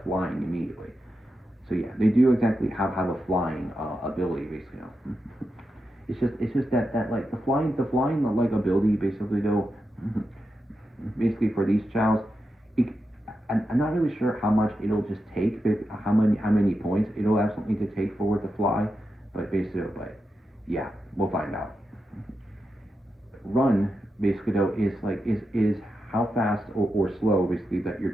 immediately. So yeah, they do exactly have a flying ability basically. It's just that like the flying like ability basically though, basically for these Chaos, I'm not really sure how much it'll just take, how many points it'll absolutely need to take for it to fly, but yeah, we'll find out. Run basically though is how fast or slow basically that your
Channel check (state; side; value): normal; both; correlation 0.88